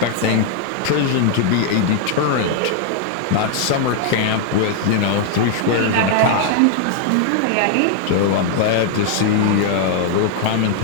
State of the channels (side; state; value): both; different; correlation 0.00